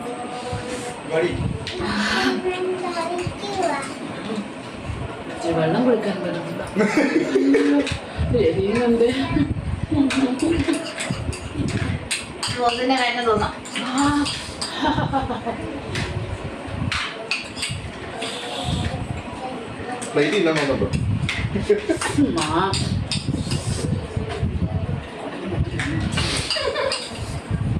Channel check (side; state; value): both; identical; correlation 1.00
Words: വെള്ളം കുടിക്കാൻ പറ്റുന്നില്ല. എരിയുന്നുണ്ട്. റോസിന്റെ കാര്യം തോന്നാം.